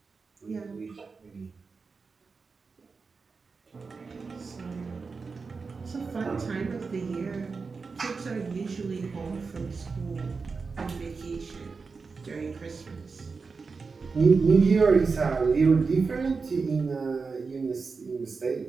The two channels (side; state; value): left; quieter; 4.7 dB